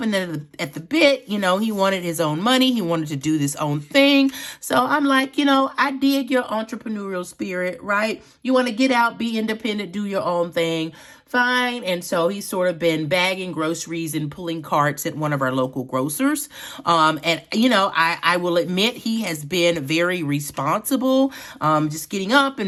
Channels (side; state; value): both; identical; correlation 1.00